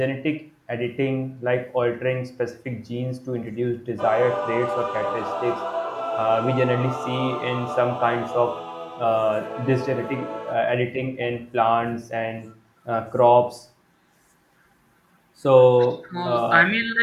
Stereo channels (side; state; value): both; identical; correlation 1.00